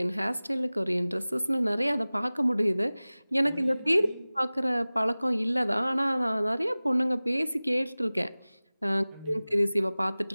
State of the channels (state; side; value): inverted; both; correlation -0.99